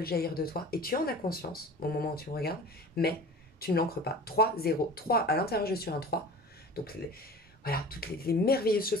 jaillir de toi et tu en as conscience au moment où tu me regardes, mais tu ne l'ancres pas. 3, 0. 3, à l'intérieur, je suis un 3. Donc, voilà, toutes les merveilleuses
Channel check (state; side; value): normal; both; correlation 0.39